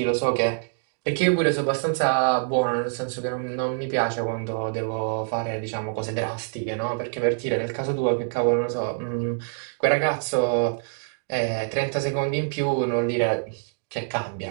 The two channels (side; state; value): left; silent; digital silence